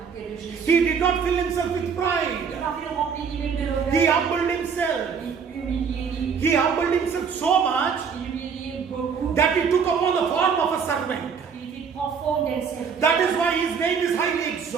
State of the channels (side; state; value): left; quieter; 6.3 dB